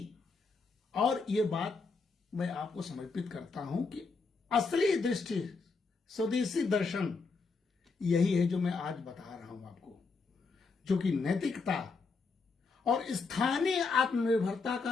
और ये बात मैं आपको समर्पित करता हूं कि असली दृष्टि, स्वदेशी दर्शन यही है जो मैं आज बता रहा हूं आपको, जो कि नैतिकता और स्थानीय आत्मनिर्भरता का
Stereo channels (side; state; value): right; quieter; 4.3 dB